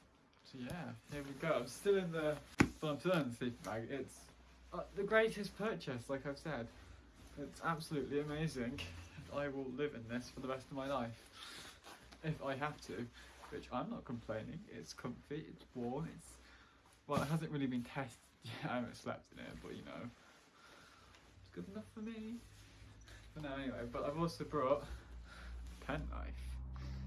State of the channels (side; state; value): both; identical; correlation 1.00